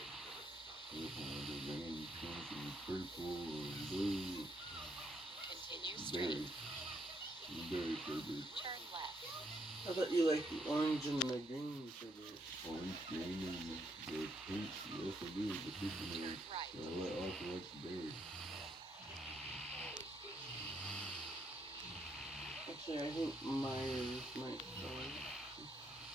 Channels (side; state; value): both; normal; correlation 0.74